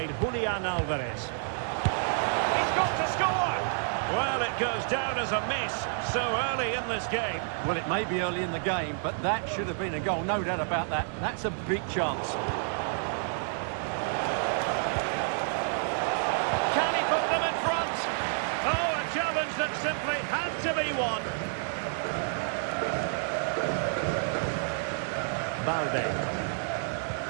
Julian Alvarez. He's got to score! Well, it goes down as a miss so early in this game. Well, it may be early in the game, but that should have been a goal, no doubt about that. That's a big chance. Can he put them in front? Oh, a challenge that simply had to be won. Balde.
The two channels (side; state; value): left; silent; digital silence